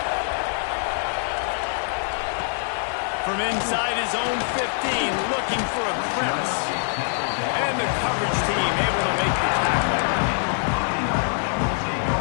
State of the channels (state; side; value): silent; right; digital silence